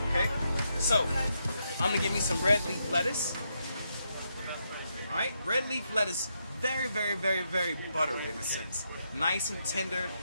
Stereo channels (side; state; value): both; inverted; correlation -0.81